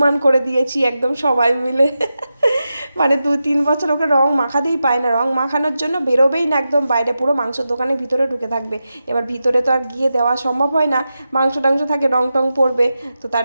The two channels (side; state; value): both; inverted; correlation -0.90